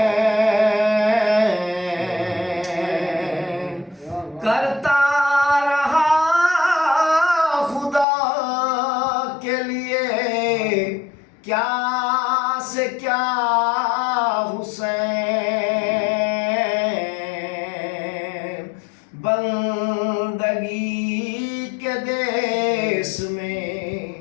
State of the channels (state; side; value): drops out; right; at 8.1 s